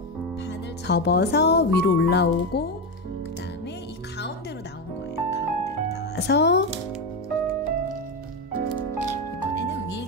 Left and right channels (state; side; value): normal; both; correlation 0.13